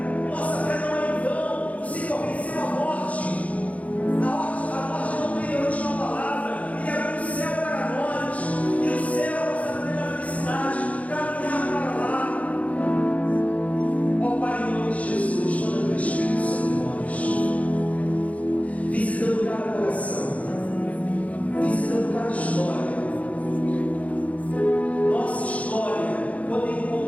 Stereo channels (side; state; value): right; late; 0.068 ms